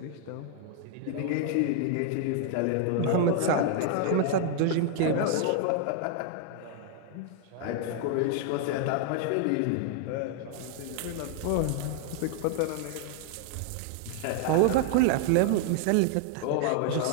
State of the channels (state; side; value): different; both; correlation 0.00